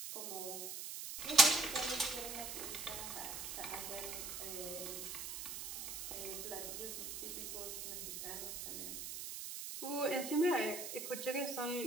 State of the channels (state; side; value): noise; right; hiss, 6 dB below the sound